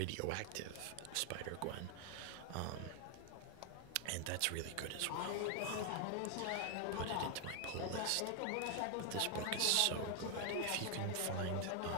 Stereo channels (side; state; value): both; different; correlation 0.00